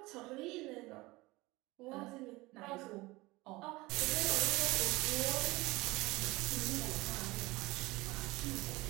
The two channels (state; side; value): quieter; left; 21.4 dB